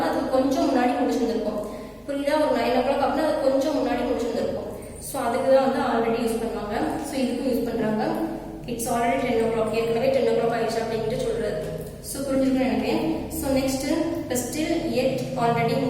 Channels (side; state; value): both; identical; correlation 1.00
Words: அது கொஞ்சம் முன்னாடி முடிச்சிருந்திருக்கும். புரியுதா? ஒரு 9 o'clock அப்படின்னா அது கொஞ்சம் முன்னாடி முடிச்சிருந்திருக்கும். ஸோ அதுக்கு தான் வந்து ஆல்ரெடி யூஸ் பண்ணுவாங்க. ஸோ இதுக்கும் யூஸ் பண்ணுறாங்க. இட்ஸ் ஆல்ரெடி 10 o'clock, ஏற்கனவே 10 o'clock ஆயிடுச்சு அப்படின்ட்டு சொல்றது. ஸோ புரிஞ்சுக்கணும்னு நினைக்கிறேன். ஸோ நெக்ஸ்ட் ஸ்டில், எட் ஆல்ரெடி